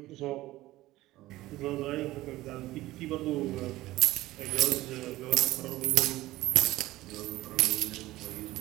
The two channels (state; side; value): quieter; left; 17.1 dB